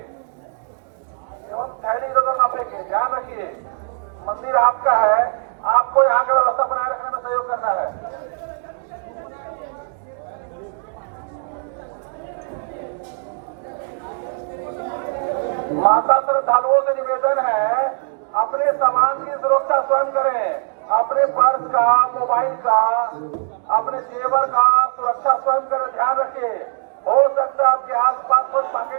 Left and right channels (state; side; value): silent; left; digital silence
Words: एवं थैली इधर उधर ना फेंके। ध्यान रखिए, मंदिर आपका है, आपको यहाँ की व्यवस्था बनाए रखने में सहयोग करना है। माता श्रद्धालुओं से निवेदन है, अपने सामान की सुरक्षा स्वयं करें। अपने पर्स का, मोबाइल का, अपने जेवर का सुरक्षा स्वयं करें। ध्यान रखिए, हो सकता है आपके आसपास कुछ